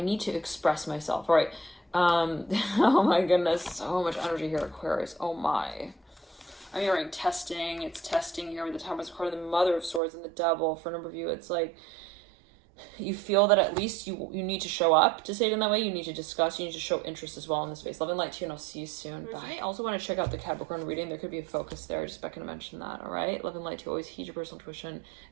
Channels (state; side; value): drops out; left; at 10.0 s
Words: need to express myself. All right. Oh my goodness, so much energy here, Aquarius. Oh my. I'm hearing testing. It's testing here with the Temperance card, the Mother of Swords, and the Devil. For a number of you, it's like you feel that at least you need to show up, to say it in that way. You need to discuss, you need to show interest as well in the space. Love and light to you, and I'll see you soon. Bye. I also want to check out the Capricorn reading. There could be a focus there. Just back to mention that. All right. Love and light to you. Always heed your personal intuition,